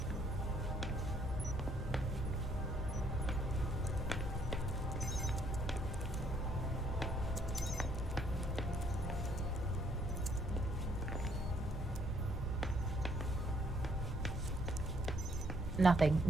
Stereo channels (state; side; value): normal; both; correlation 0.67